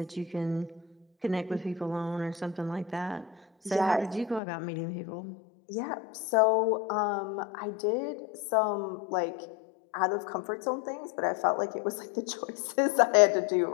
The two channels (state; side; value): drops out; right; at 4.4 s